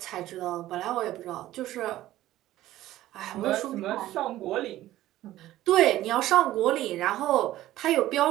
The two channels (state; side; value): quieter; left; 14.8 dB